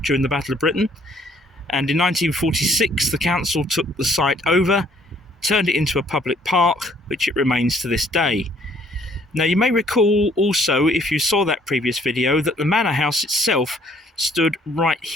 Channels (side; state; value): both; normal; correlation 0.62